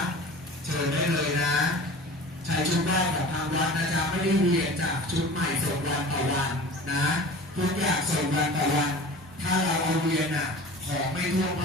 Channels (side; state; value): both; normal; correlation 0.39